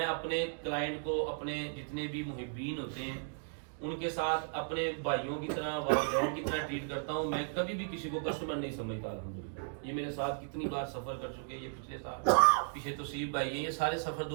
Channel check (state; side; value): silent; left; digital silence